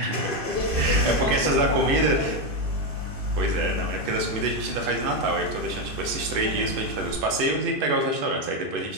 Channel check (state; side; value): late; left; 2.5 ms